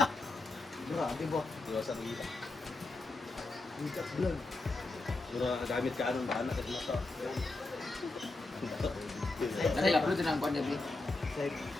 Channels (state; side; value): quieter; right; 3.2 dB